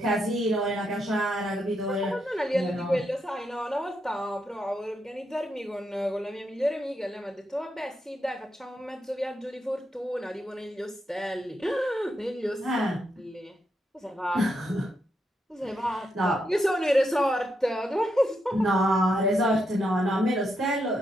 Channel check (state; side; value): normal; both; correlation 0.81